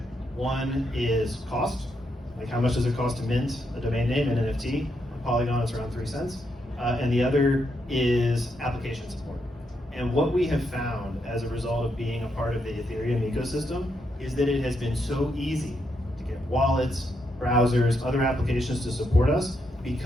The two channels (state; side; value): normal; both; correlation 0.80